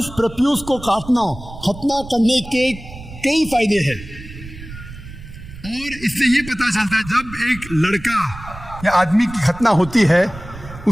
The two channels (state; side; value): noise; right; rumble, 15 dB below the sound